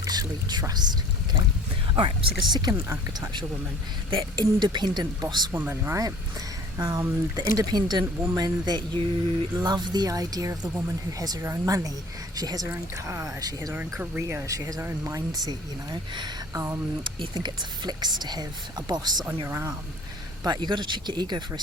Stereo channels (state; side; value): normal; both; correlation 0.49